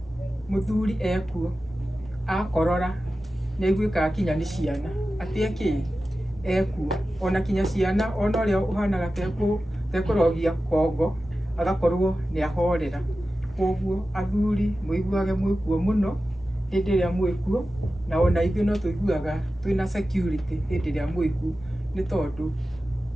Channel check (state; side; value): normal; both; correlation 0.94